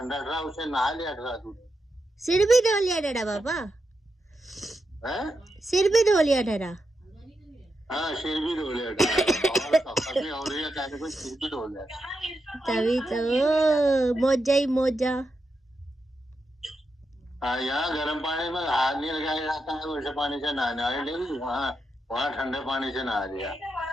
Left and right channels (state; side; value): normal; both; correlation 0.86